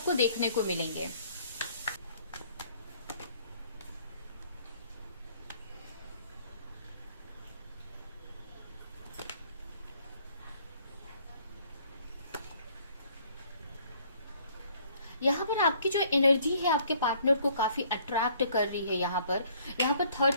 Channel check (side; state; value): both; inverted; correlation -0.61